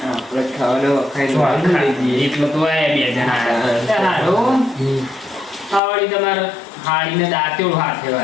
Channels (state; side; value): drops out; right; at 5.8 s